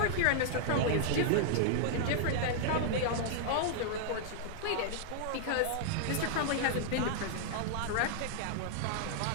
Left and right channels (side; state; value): both; different; correlation -0.01